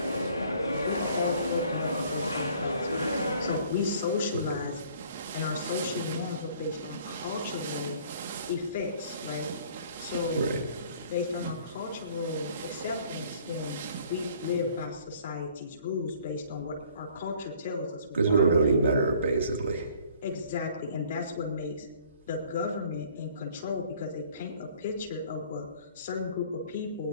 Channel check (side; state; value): both; inverted; correlation -0.55